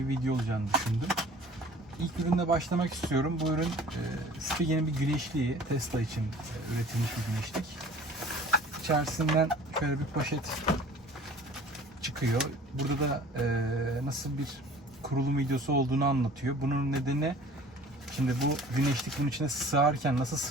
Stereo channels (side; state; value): both; normal; correlation 0.47